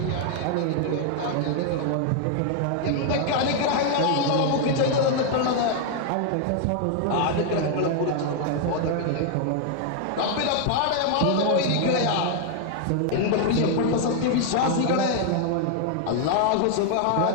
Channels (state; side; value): different; both; correlation 0.00